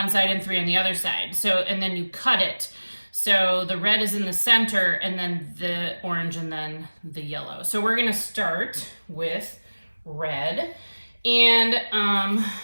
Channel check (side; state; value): both; inverted; correlation -1.00